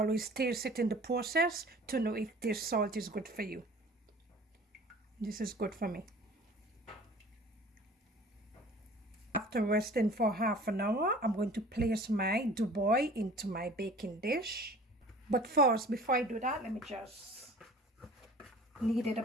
taste it in the process to know if this salt is good for you. This is good for me. After resting for half an hour, I'm going to place my Doughboy into my baking dish. But first, before I do that, let me just knead it a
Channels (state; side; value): normal; both; correlation 0.46